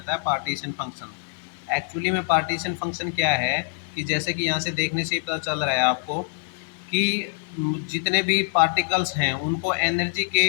है, पार्टीशन फंक्शन। एक्चुअली में पार्टीशन फंक्शन क्या है कि जैसे कि यहाँ से देखने से ही पता चल रहा है आपको कि जितने भी पार्टिकल्स हैं उनको एनर्जी के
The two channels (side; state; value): right; silent; 56 dB below the other